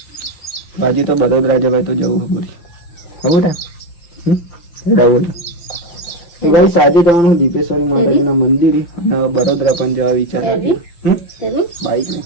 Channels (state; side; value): late; right; 5.8 ms